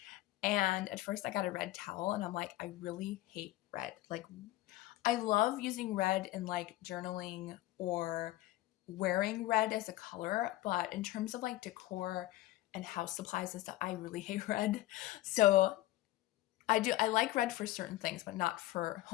And at first I got a red towel, and I'm like, I really hate red. Like, I love using red in like journaling or wearing red as a color, but in terms of like decor and house supplies and stuff, I really hate red. So I like red for certain things, but not for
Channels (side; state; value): right; quieter; 16.6 dB